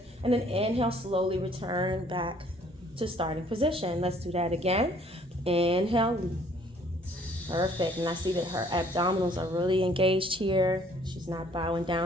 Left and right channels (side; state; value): both; normal; correlation 0.59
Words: And then inhale, slowly return back to starting position. Let's do that again. Inhale, perfect. And I see that her abdominals are really engaged here. She's not bowing